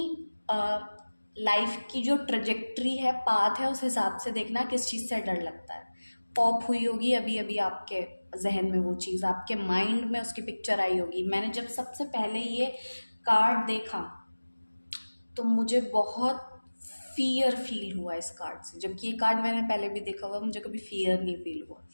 लाइफ की जो ट्रजेक्ट्री है, पाथ है, उस हिसाब से देखना किस चीज़ से डर लगता है। पॉप हुई होगी अभी अभी आपके जहन में वो चीज़, आपके माइंड में उसकी पिक्चर आई होगी। मैंने जब सबसे पहले ये कार्ड देखा तो मुझे बहुत फियर फील हुआ इस कार्ड से, जबकि ये कार्ड मैंने पहले भी देखा हुआ, मुझे कभी फियर नहीं फील हुआ।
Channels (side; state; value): both; inverted; correlation -1.00